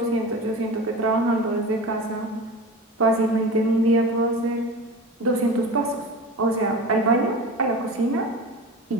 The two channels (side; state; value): both; normal; correlation 0.32